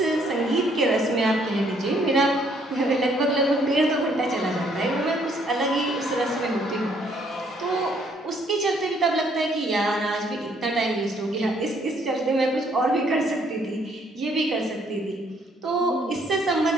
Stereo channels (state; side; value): normal; both; correlation 0.66